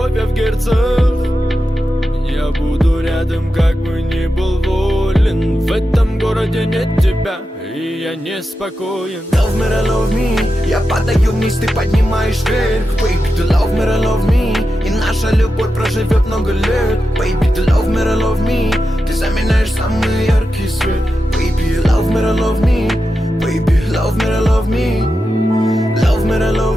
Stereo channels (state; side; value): normal; both; correlation 0.90